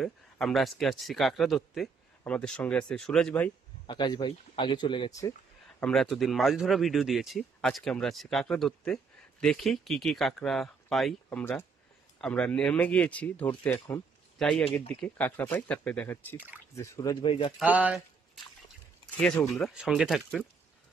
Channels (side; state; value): left; quieter; 5.0 dB